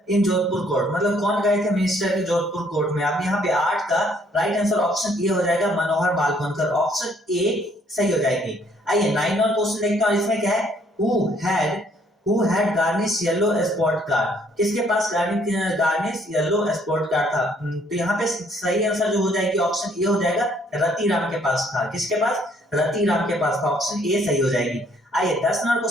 in Jodhpur court, मतलब कौन गए थे मिनिस्टर के जोधपुर कोर्ट में। अब यहाँ पे 8 का राइट आंसर ऑप्शन ए हो जाएगा, मनोहर मालवणकर, ऑप्शन ए सही हो जाएगी। आइए 9 नंबर क्वेश्चन देखते हैं और इसमें क्या है, who had garnish yellow spot card, किसके पास गार्निश येलो स्पॉट कार्ड था, तो यहाँ पे सही आंसर जो हो जाएगी ऑप्शन ए हो जाएगा, रति राम के पास था, किसके पास, रति राम के पास था, ऑप्शन ए सही हो जाएगी। आइए 10 नंबर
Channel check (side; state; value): both; normal; correlation 0.65